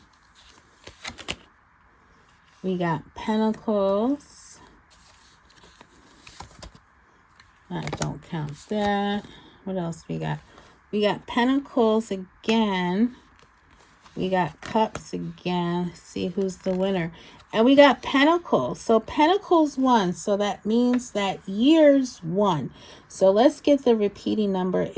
We got pentacles. I don't count that. What else we got? We got pentacles again. We got cups again. See who's the winner. And we got pentacles. So pentacles won. So that means that years won. So let's get the repeating number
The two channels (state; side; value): identical; both; correlation 1.00